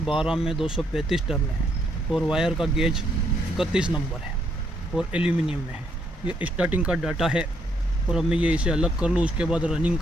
में 235 टर्न है और वायर का गेज 31 नंबर है और एल्यूमिनियम में है। ये स्टार्टिंग का डाटा है और अब मैं ये इसे अलग कर लूँ, उसके बाद रनिंग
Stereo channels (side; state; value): both; normal; correlation 0.73